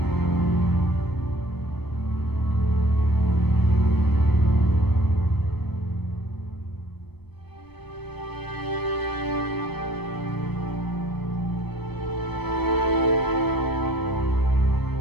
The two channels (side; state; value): right; late; 0.97 ms